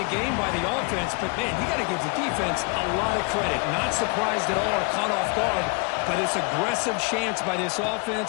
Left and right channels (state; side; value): quieter; right; 32.3 dB